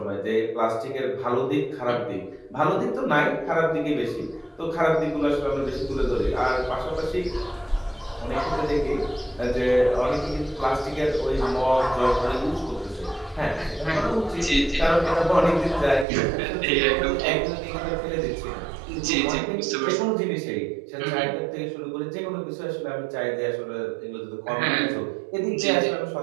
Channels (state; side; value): drops out; left; at 16.1 s